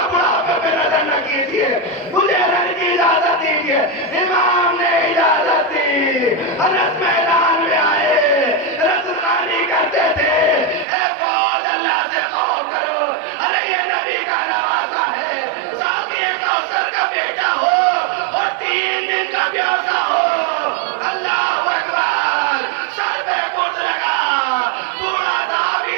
بڑھاپے پہ نظر نہ کیجیے، مجھے رن کی اجازت دیجیے. امام نے اجازت دی. انس میدان میں آئے، رزقانی کرتے تھے اے فوج اللہ سے خوف کرو. ارے یہ نبی کا نوازا ہے، ساقی کوثر کا بیٹا ہو اور 3 دن کا پیاسا ہو.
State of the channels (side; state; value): left; drops out; at 10.9 s